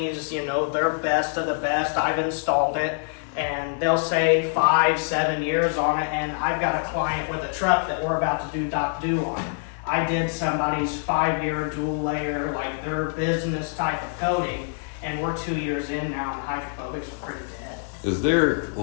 they're best of the best. I've installed it, and they'll say 5-7 years on it, and I've got a client with a truck that we're about to do Doc Do on. I did somebody's 5-year dual layer, their business type of coating, and we're 2 years in now, and hydrophobics are pretty dead. Is there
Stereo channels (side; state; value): right; silent; digital silence